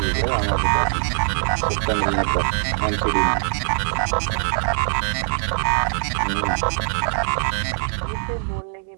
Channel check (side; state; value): left; silent; 61 dB below the other